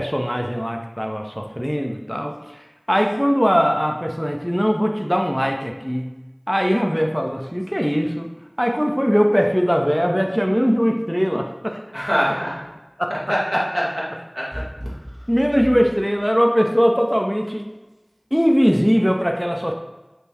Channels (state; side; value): identical; both; correlation 1.00